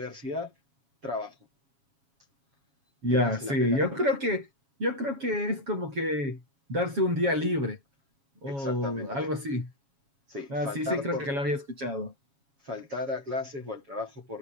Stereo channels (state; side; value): late; left; 7.3 ms